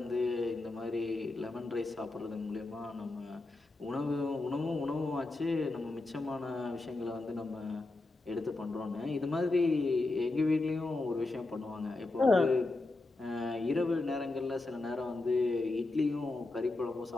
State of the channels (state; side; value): quieter; right; 3.1 dB